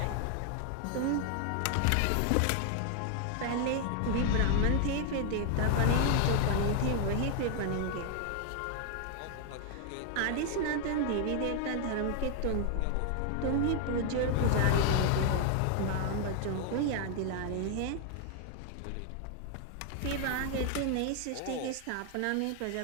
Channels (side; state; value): both; different; correlation 0.00